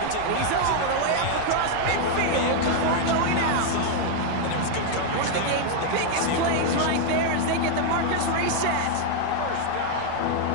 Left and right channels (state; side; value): different; both; correlation 0.00